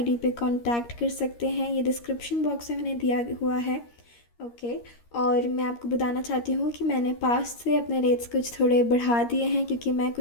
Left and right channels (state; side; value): late; right; 13 ms